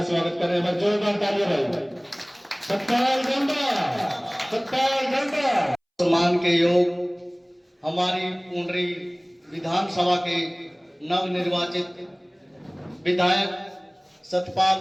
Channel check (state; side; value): identical; both; correlation 1.00